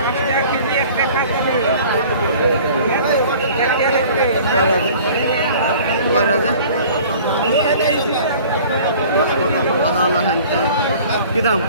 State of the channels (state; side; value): inverted; both; correlation -0.48